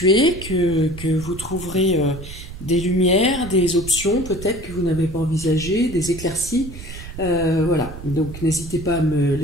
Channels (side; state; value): right; noise; rumble, 12 dB below the sound